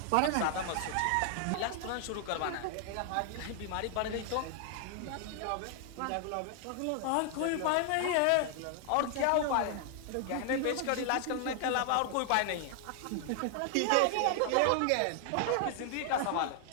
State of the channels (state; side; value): different; both; correlation 0.00